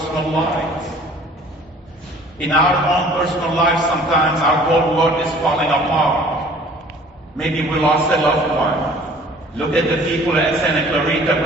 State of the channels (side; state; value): both; normal; correlation 0.51